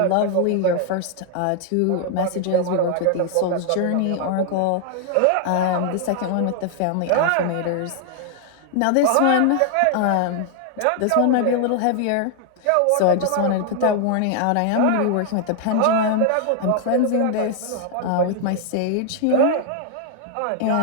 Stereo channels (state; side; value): different; both; correlation 0.00